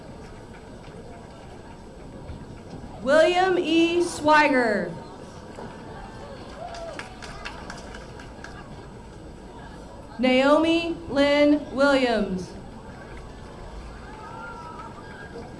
William E. Swiger. Naomi Lynn Williams.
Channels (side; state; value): both; identical; correlation 1.00